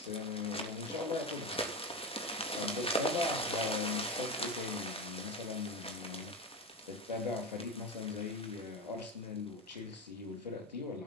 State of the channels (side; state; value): both; normal; correlation 0.20